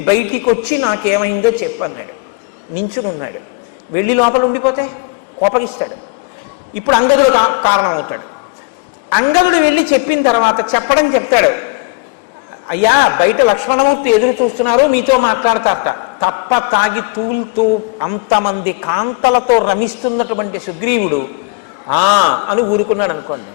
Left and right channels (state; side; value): quieter; right; 28.7 dB